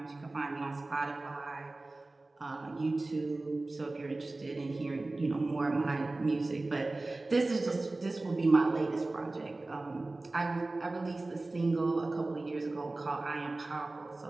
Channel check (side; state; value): left; quieter; 3.1 dB